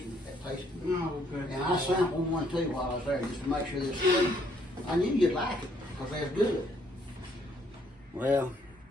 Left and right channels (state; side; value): normal; both; correlation 0.67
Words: and that taste good. Oh, good. And I sampled one too while I was there, just to make sure they're sweet. I knew you'd like it, because they're good. Well,